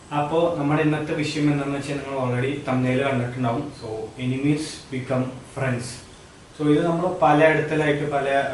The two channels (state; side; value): identical; both; correlation 1.00